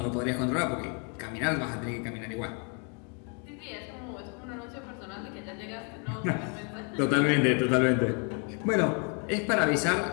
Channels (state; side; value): quieter; right; 37.8 dB